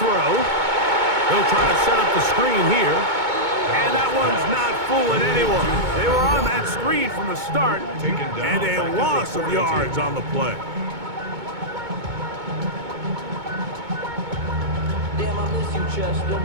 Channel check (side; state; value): left; late; 2.2 ms